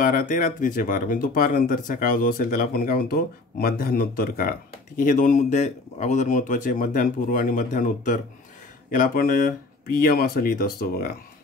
ते रात्रीचे 12, म्हणजे दुपारनंतरचा काळ जो असेल त्याला आपण काय म्हणतो, मध्यान्होत्तर काळ. ठीक आहे. हे दोन मुद्दे अगोदर महत्त्वाचे, मध्यान्हपूर्व आणि मध्यान्होत्तर. याला आपण PM असं लिहित असतो बघा.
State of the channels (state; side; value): quieter; right; 3.3 dB